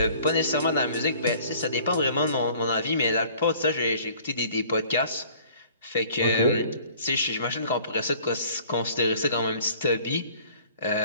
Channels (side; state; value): both; inverted; correlation -0.53